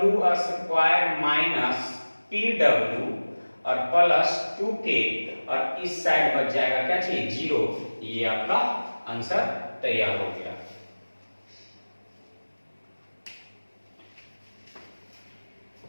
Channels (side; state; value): both; inverted; correlation -1.00